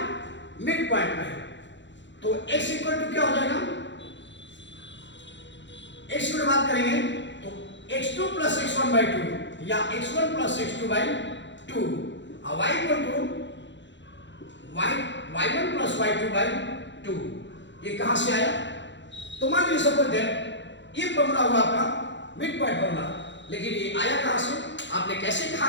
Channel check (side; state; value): right; late; 0.53 ms